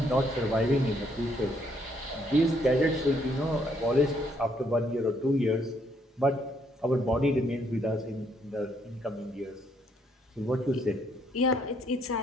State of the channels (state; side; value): normal; both; correlation 0.70